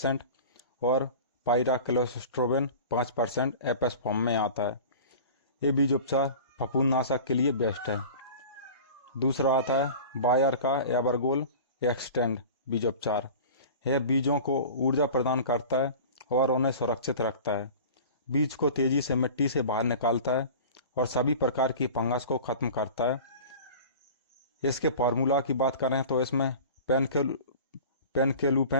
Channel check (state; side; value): inverted; both; correlation -0.39